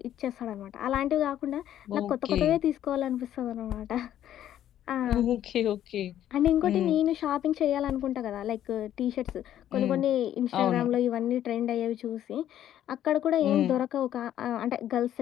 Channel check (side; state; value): right; quieter; 11.4 dB